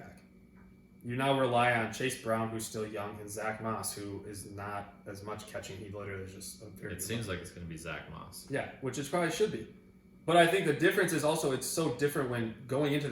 you now rely on Chase Brown, who's still young, and Zach Moss, who is not as much catching. He literally is just a very... It seems like it's going to be Zach Moss. Yeah, which it probably should be. But I think the difference is also it's so different when going into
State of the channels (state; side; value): identical; both; correlation 1.00